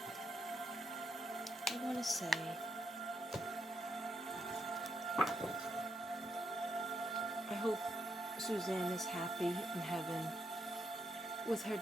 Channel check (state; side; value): normal; both; correlation 0.80